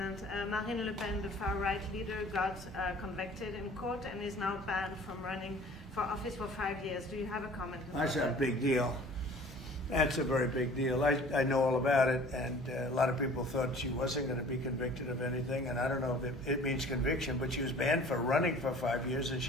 Marine Le Pen, the far-right leader, got convicted in court and is now banned from running for office for 5 years. Do you have a comment on That's a that? big deal. That's a very big deal. I know all about it, and a lot of people thought she wasn't going to be convicted of anything, and I don't know if it means conviction, but she was banned for running for 5 years, and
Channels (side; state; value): both; normal; correlation 0.48